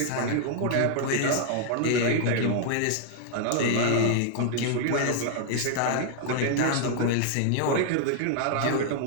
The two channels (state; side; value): different; both; correlation -0.01